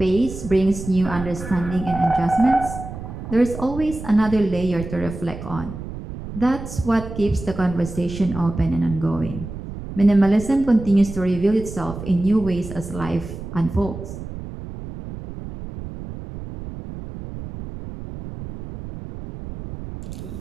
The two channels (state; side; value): noise; right; rumble, 10 dB below the sound